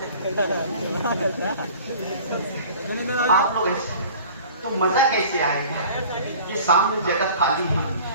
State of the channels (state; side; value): inverted; both; correlation -0.45